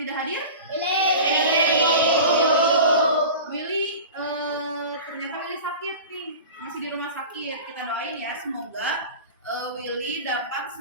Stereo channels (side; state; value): both; inverted; correlation -0.34